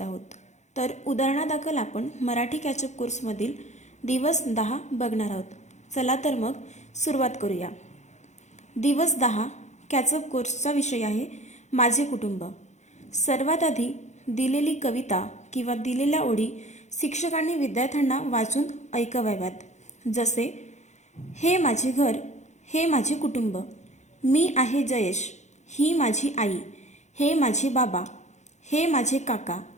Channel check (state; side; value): late; right; 0.33 ms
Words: आहोत। तर उदाहरणादाखल आपण मराठी कॅचअप कोर्समधील दिवस 10 बघणार आहोत। चला तर मग सुरुवात करूया। दिवस 10 कॅचअप कोर्सचा विषय आहे माझे कुटुंब। सर्वात आधी दिलेली कविता किंवा दिलेल्या ओळी शिक्षकांनी विद्यार्थ्यांना वाचून ऐकवाव्यात। जसे हे माझे घर, हे माझे कुटुंब, मी आहे जयेश, ही माझी आई, हे माझे बाबा, हे माझे काका,